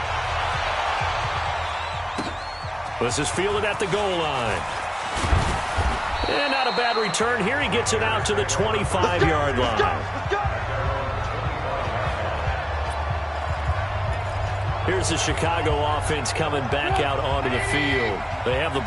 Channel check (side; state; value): both; identical; correlation 1.00